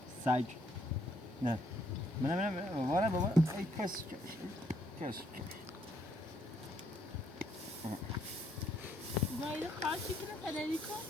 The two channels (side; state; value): both; normal; correlation 0.70